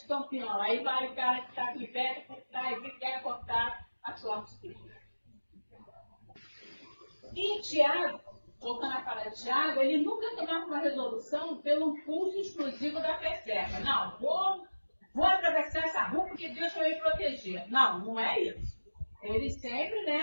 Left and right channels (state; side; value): inverted; both; correlation -1.00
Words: campeão. Aí vai o cara que está aqui perto por trás e quer cortar a sua filha. E Tiago, voltando a falar de Tiago, ele nunca tomava uma resolução pelo impulso exclusivo da fé cega. Não, vou atravessar essa rua porque Deus vai me proteger. Não, não é isso. Ele sempre,